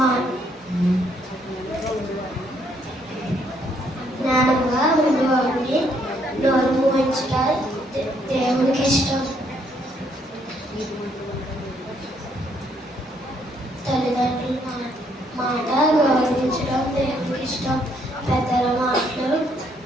జ్ఞానంగా ఉండేవాడిని నోరు మూయించడం దేవునికి ఇష్టం. తల్లిదండ్రుల మాట గౌరవించడం దేవునికి ఇష్టం. పెద్దల మాటలు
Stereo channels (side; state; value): both; normal; correlation 0.70